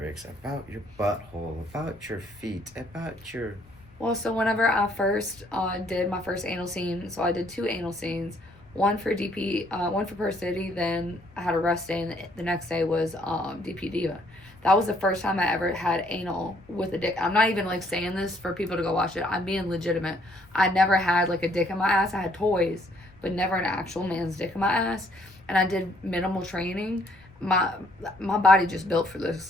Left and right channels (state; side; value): noise; left; rumble, 26 dB below the sound